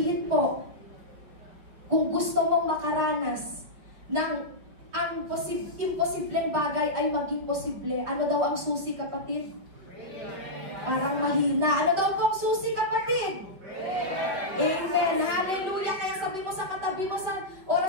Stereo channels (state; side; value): late; left; 5.5 ms